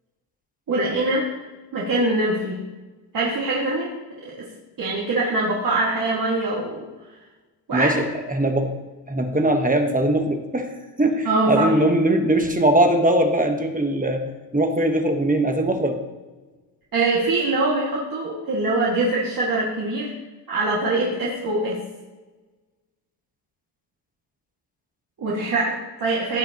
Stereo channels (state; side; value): normal; both; correlation 0.21